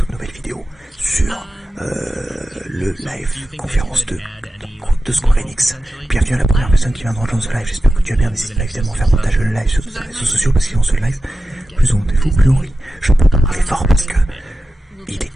nouvelle vidéo sur le live conférence de Square Enix. Bienvenue à la première personne qui vient de rejoindre ce live, j'espère que tu vas bien, n'hésite pas évidemment à faire partager le live sur tous les réseaux sociaux parce qu'ils ont ce live. Plus on est fou, plus on rit. Je peux pas parler fort parce que il est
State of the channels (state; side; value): normal; both; correlation 0.93